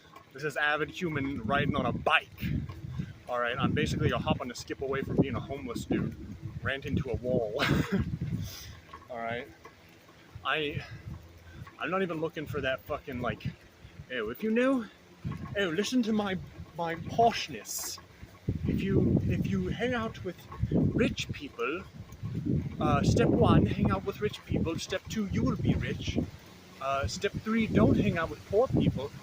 This is avid human riding on a bike. All right, I'm basically a hop on a skip away from being a homeless dude, ranting to a wall. All right, I'm not even looking for that fucking like, if you knew, listen to my poshness. If you hang out with rich people, step 1, hang out with rich people. Step 2, you will be rich. Step 3, don't hang out with poor people.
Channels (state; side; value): identical; both; correlation 1.00